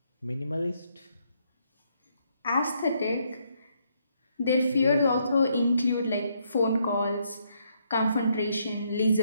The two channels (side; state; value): both; inverted; correlation -0.74